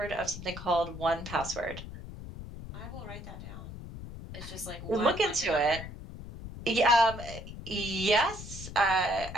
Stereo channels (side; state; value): left; noise; rumble, 11 dB below the sound